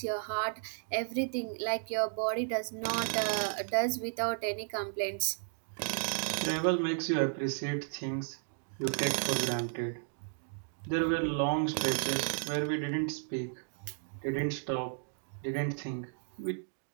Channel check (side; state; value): left; silent; digital silence